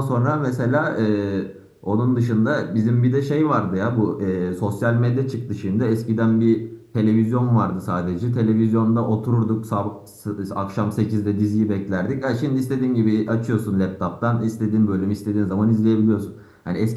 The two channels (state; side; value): identical; both; correlation 1.00